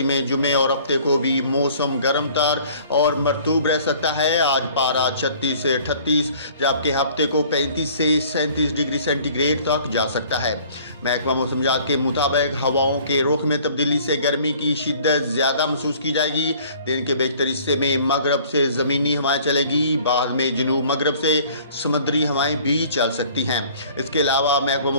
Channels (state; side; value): inverted; both; correlation -0.52